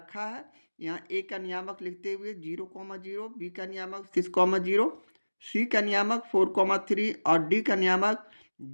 है। यहाँ A का नियामक लिखते हुए 0,0, B का नियामक 6,0, C का नियामक 4,3 और D का नियामक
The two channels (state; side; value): inverted; both; correlation -1.00